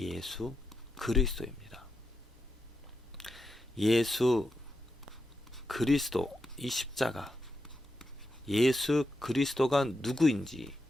그리스도입니다. 예수 그리스도, 이 십자가, 예수 그리스도가 누구인지,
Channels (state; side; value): normal; both; correlation 0.86